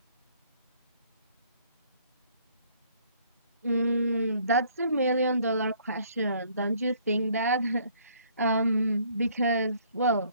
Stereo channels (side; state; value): both; inverted; correlation -0.61